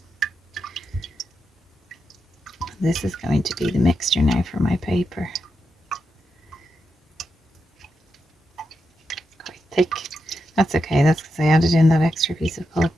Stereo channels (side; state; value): both; normal; correlation 0.86